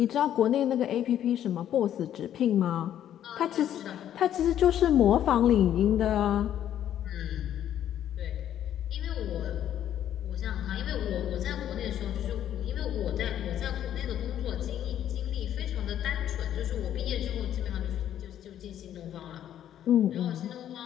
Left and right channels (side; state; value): right; quieter; 10.8 dB